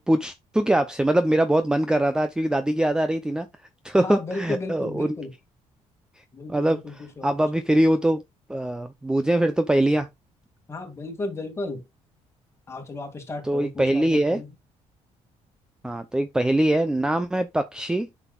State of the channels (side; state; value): both; normal; correlation 0.95